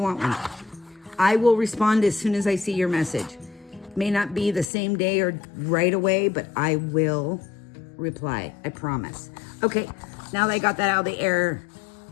want one. I will respond as soon as I see your message. May not be the same day or right away, but I will reply. I promise. Okay, now that I got that out of the air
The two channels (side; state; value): right; drops out; at 4.7 s